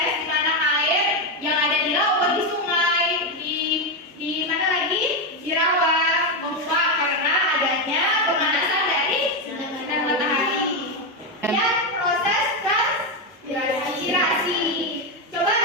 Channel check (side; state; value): both; normal; correlation 0.08